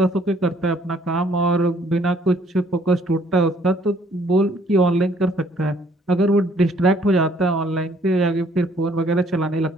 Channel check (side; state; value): both; normal; correlation 0.63